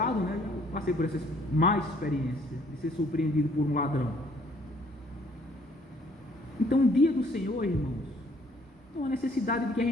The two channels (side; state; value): both; normal; correlation 0.61